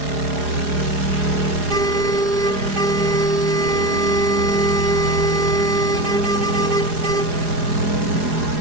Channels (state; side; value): late; left; 4.8 ms